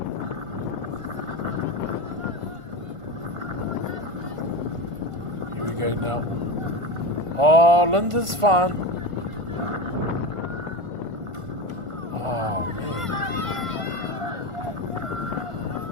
Here we go now. Oh, Lindisfarne. Oh, man.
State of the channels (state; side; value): late; left; 1.5 ms